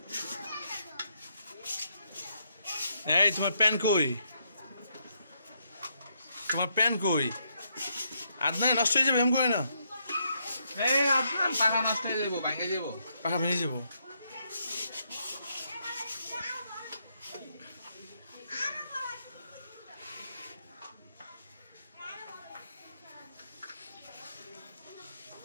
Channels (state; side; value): inverted; both; correlation -0.76